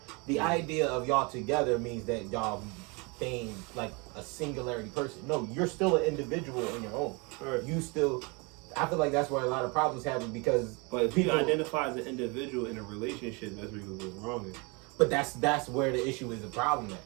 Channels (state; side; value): quieter; left; 29.5 dB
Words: The idea of y'all together means that y'all being like a singularity person. No, you're still an individual on your own. Right. You still. I feel like that's where a lot of problems happen because. But if you identify as an individual in a relationship, that's where you go wrong. But that's where the issue is the problem at.